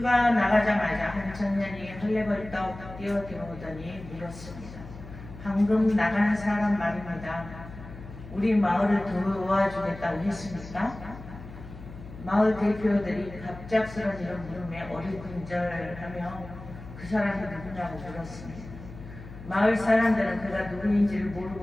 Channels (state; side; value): noise; left; hum, 15 dB below the sound